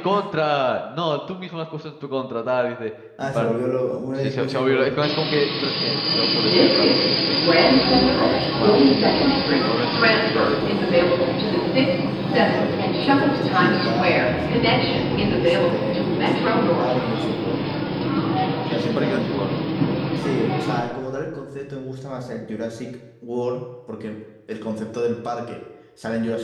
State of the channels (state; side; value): identical; both; correlation 1.00